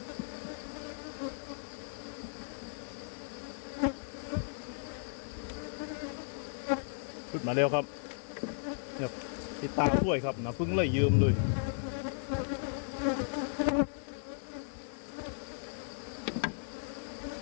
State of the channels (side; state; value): right; silent; digital silence